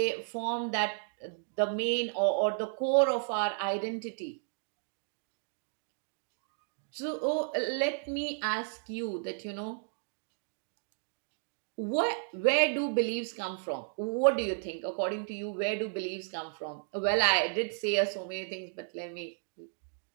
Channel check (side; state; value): left; silent; digital silence